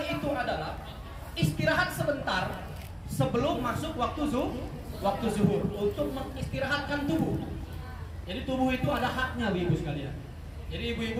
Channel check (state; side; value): identical; both; correlation 1.00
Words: itu adalah istirahat sebentar sebelum masuk waktu zuhur untuk mengistirahatkan tubuh. Jadi tubuh itu ada haknya ibu sekalian. Jadi